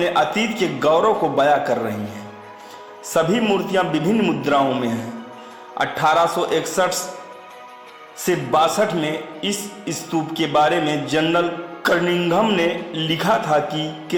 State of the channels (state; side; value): identical; both; correlation 1.00